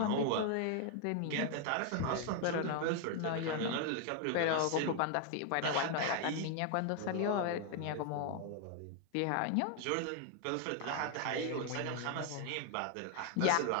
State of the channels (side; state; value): both; different; correlation 0.01